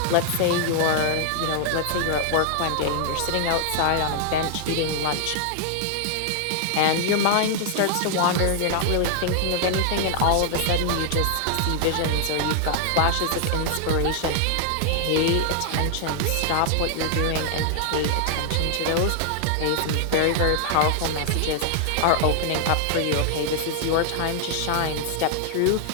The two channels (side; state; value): both; different; correlation 0.00